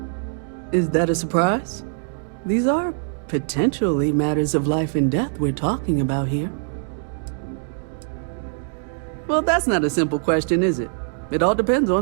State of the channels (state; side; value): silent; left; digital silence